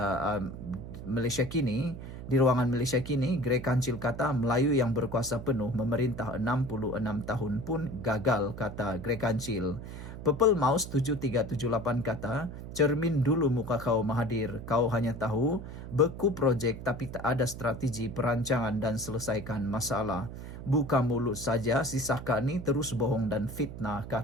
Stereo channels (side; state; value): right; noise; hum, 10 dB below the sound